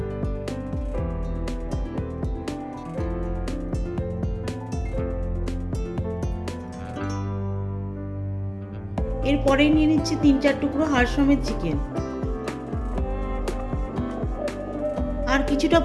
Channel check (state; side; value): identical; both; correlation 1.00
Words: এরপরেই নিয়ে নিচ্ছি 3-4 টুকরো হাড় সমেত চিকেন আর কিছুটা